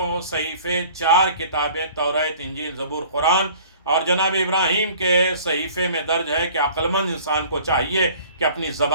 صحیفے، 4 کتابیں، توریت، انجیل، زبور، قرآن، اور جناب ابراہیم کے صحیفے میں درج ہے کہ عقل مند انسان کو چاہیے کہ اپنی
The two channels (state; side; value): inverted; both; correlation -0.49